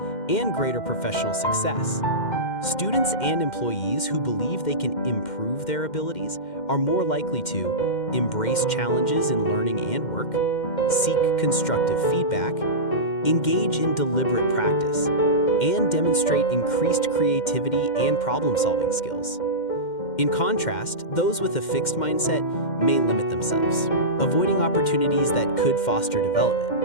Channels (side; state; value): right; late; 2.1 ms